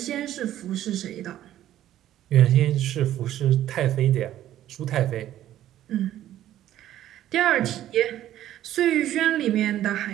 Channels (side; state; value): left; quieter; 12.6 dB